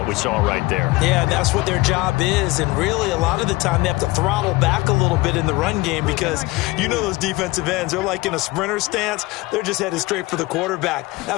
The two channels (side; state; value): right; quieter; 21.6 dB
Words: we saw right there. Yeah, and that's what their job is. And really, a lot of the time, they have to throttle back a little bit in the run game because you know those defensive ends, they're like in a sprinter stance. They're just headed straight for the quarterback. That